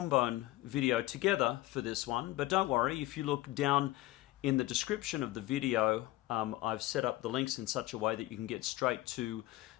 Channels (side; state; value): right; quieter; 17.1 dB